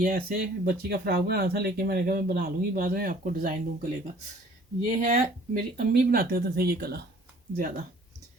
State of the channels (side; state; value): both; normal; correlation 0.53